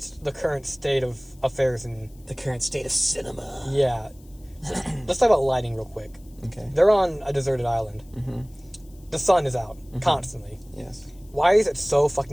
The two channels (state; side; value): noise; left; hiss, 29 dB below the sound